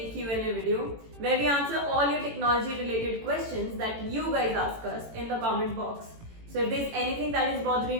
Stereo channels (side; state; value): left; late; 18 ms